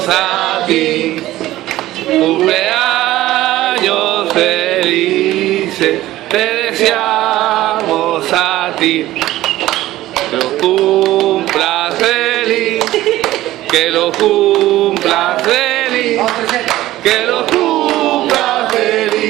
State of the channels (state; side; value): quieter; left; 15.6 dB